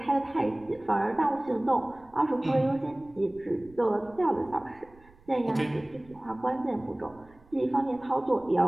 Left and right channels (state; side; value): noise; right; rumble, 26 dB below the sound